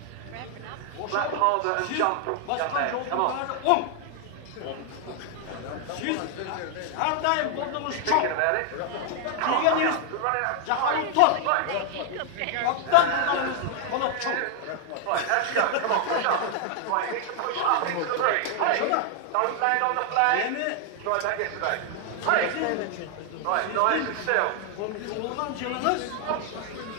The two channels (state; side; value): different; both; correlation 0.00